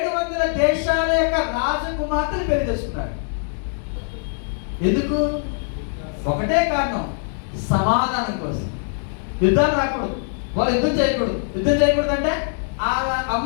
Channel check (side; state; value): right; silent; digital silence